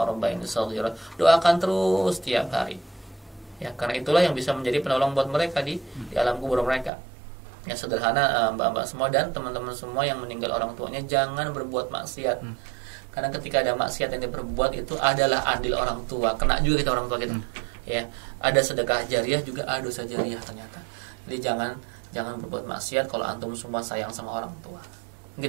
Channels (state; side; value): drops out; left; at 6.9 s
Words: rabbayani shaghira. Doakan terus tiap hari. Ya, karena itulah yang bisa menjadi penolong buat mereka di alam kubur mereka. Ya, sederhana mbak-mbak semua dan teman-teman semua yang meninggal orang tuanya, jangan berbuat maksiat. Karena ketika ada maksiat yang diperbuat itu adalah adil orang tua, kena juga kita orang tua kita. Ya, ada sedekah jariah juga ada dosa jariah ternyata. Jadi jangan berbuat maksiat kalau antum semua sayang sama orang tua.